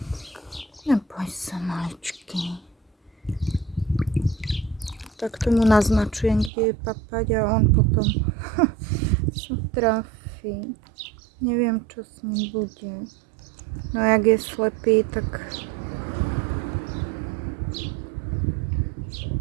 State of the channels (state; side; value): drops out; left; at 6.5 s